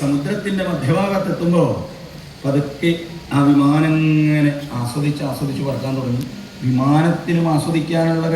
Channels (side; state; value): both; identical; correlation 1.00